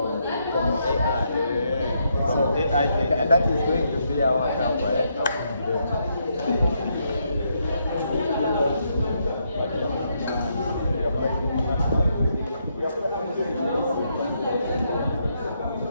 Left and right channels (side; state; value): both; inverted; correlation -0.77